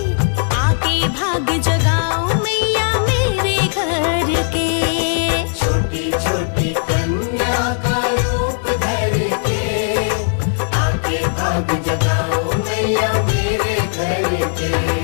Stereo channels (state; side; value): silent; right; digital silence